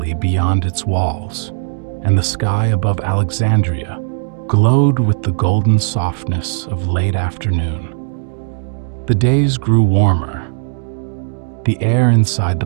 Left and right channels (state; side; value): silent; left; digital silence